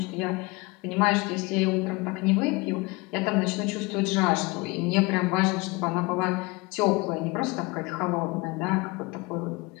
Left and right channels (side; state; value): right; quieter; 24.9 dB